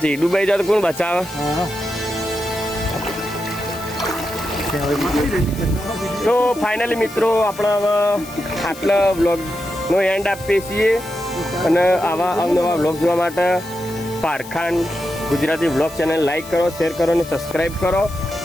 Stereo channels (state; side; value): noise; left; hiss, 17 dB below the sound